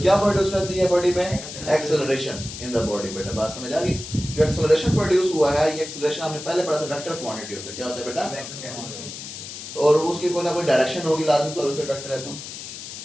क्या प्रोड्यूस करती है बॉडी में? एक्सेलरेशन इन द बॉडी बेटा. बात समझ आ गई? जो एक्सेलरेशन प्रोड्यूस हुआ है ये एक्सेलरेशन हमने पहले पढ़ा था वेक्टर क्वांटिटी होता है. क्या होता है बेटा? और उसकी कोई ना कोई डायरेक्शन होगी लाजमी तौर पे वेक्टर है. तो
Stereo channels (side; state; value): left; noise; hiss, 10 dB below the sound